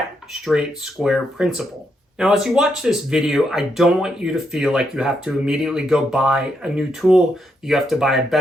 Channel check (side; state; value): both; normal; correlation 0.79